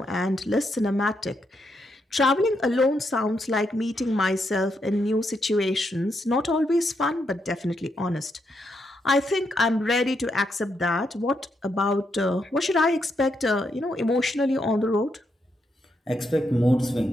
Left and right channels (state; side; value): normal; both; correlation 0.80